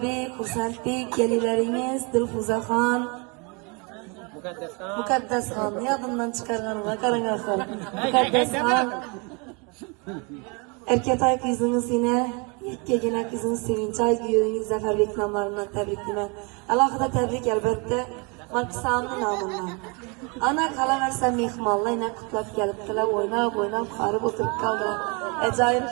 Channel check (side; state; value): left; quieter; 31.6 dB